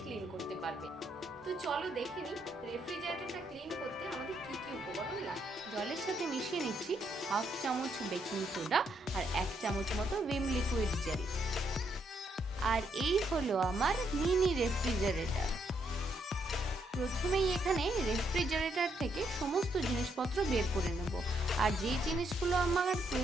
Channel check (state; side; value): normal; both; correlation 0.75